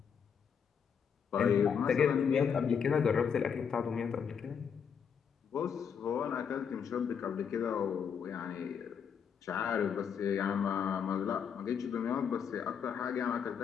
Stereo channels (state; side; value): quieter; right; 7.1 dB